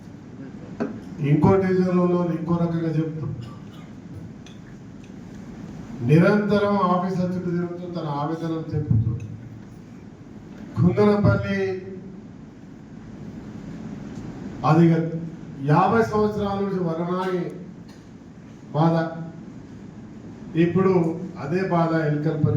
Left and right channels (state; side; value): identical; both; correlation 1.00